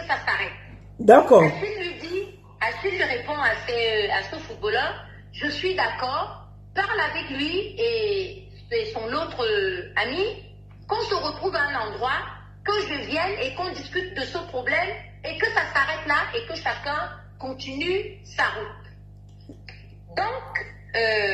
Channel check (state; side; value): identical; both; correlation 1.00